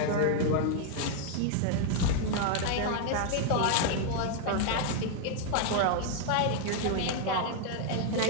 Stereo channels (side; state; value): both; different; correlation 0.00